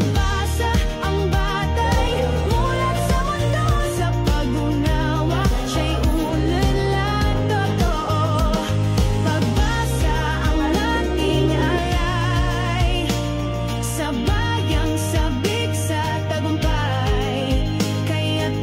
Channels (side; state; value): both; identical; correlation 1.00